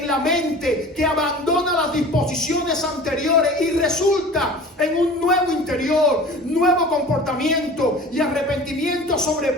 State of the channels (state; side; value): normal; both; correlation 0.40